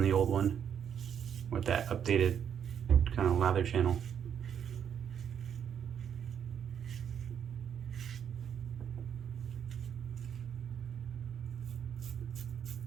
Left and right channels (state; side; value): quieter; left; 8.4 dB